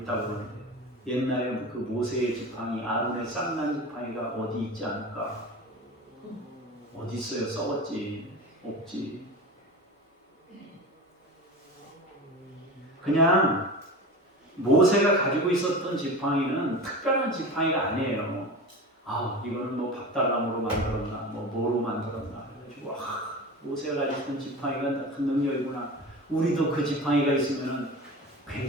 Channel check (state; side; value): normal; both; correlation 0.31